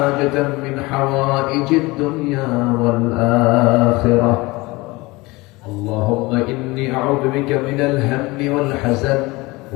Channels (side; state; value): right; quieter; 22.6 dB